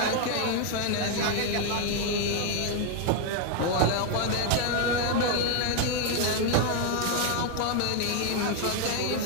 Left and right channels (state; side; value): different; both; correlation 0.01